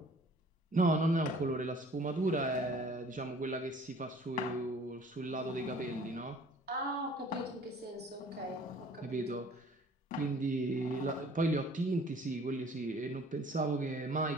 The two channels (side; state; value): both; normal; correlation 0.52